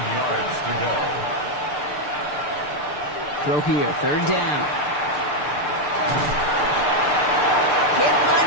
yards to go. Throw here, 3rd down. Can't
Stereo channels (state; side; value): late; right; 6.7 ms